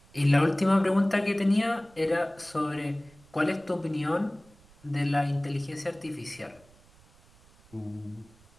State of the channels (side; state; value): right; noise; rumble, 28 dB below the sound